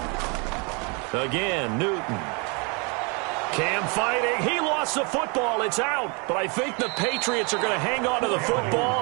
Again, Newton. Cam fighting. He lost the football. It's out. But I think the Patriots are going to hang on to the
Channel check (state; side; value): quieter; left; 32.0 dB